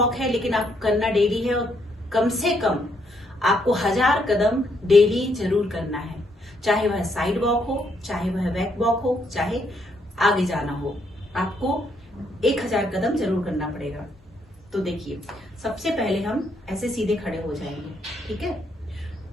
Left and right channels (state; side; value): normal; both; correlation 0.74